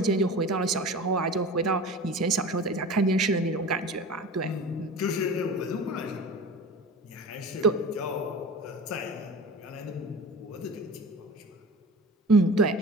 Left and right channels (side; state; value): both; normal; correlation 0.35